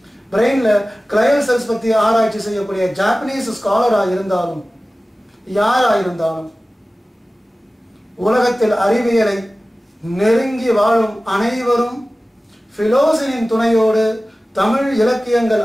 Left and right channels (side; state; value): both; normal; correlation 0.97